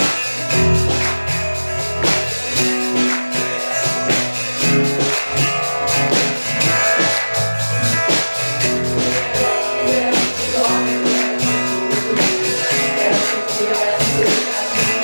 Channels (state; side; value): inverted; both; correlation -1.00